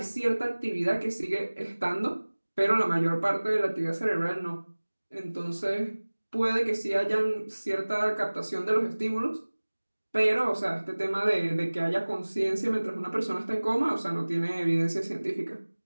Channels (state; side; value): inverted; both; correlation -1.00